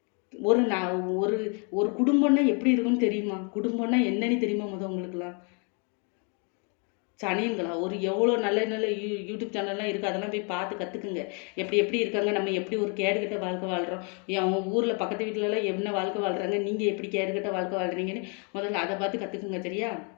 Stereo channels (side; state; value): right; quieter; 37.5 dB